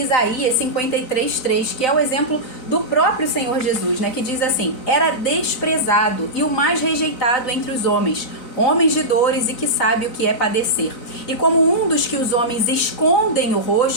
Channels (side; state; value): right; late; 4.0 ms